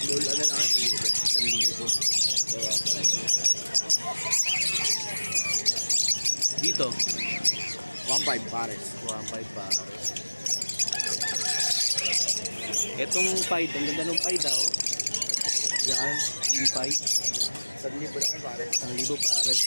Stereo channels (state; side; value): inverted; both; correlation -1.00